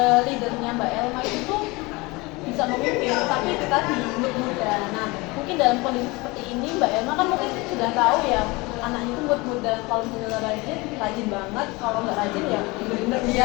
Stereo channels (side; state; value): right; quieter; 24.1 dB